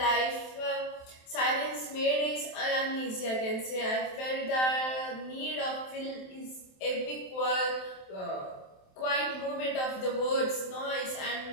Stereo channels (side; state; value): right; late; 27 ms